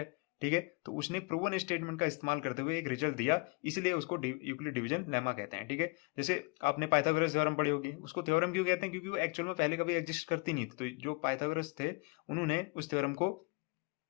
ठीक है। तो उसने प्रूवन स्टेटमेंट का इस्तेमाल करते हुए एक रिजल्ट दिया, इसलिए उसको यूक्लिड डिवीजन लेमा कहते हैं, ठीक है। जैसे आपने पाइथागोरस थ्योरम पढ़ी होगी, उसको थ्योरम क्यों कहते हैं? क्योंकि वो एक्चुअल में पहले कभी एग्जिस्ट करती नहीं थी। तो जो पाइथागोरस थे उन्होंने उस थ्योरम को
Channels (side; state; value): right; quieter; 29.3 dB